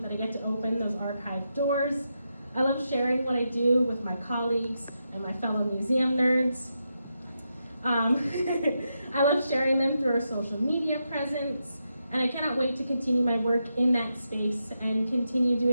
that I get to open those archive doors. I love sharing what I do with my colleagues and my fellow museum nerds. I love sharing them through our social media presence, and I cannot wait to continue my work in that space and continue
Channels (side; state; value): both; inverted; correlation -0.85